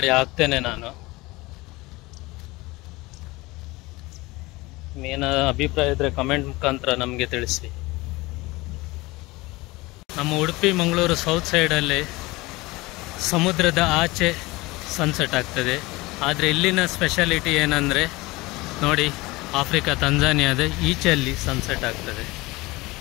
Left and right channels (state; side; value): quieter; right; 21.8 dB